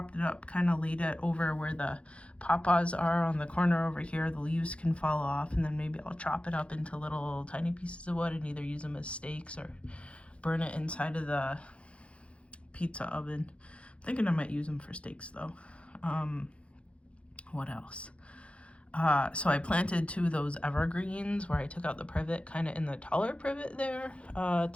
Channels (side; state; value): right; late; 0.061 ms